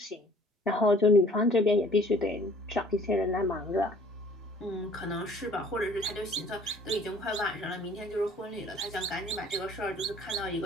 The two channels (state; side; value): normal; both; correlation 0.54